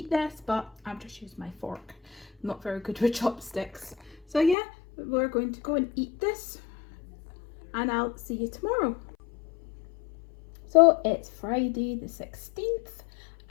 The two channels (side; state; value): right; drops out; at 4.5 s